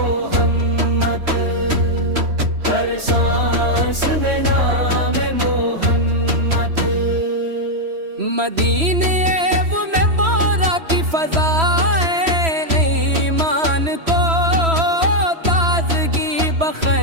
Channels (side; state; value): left; late; 3.1 ms